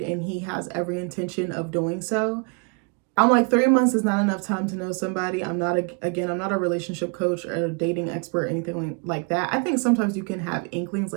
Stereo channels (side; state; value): left; quieter; 35.0 dB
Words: he has every intention of doing so. I'm like, 3 months is not enough time to know somebody. I'm not a relationship coach or a dating expert or anything like that. I think sometimes you can have inklings